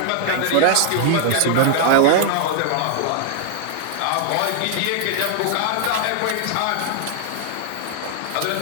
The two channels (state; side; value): different; both; correlation 0.00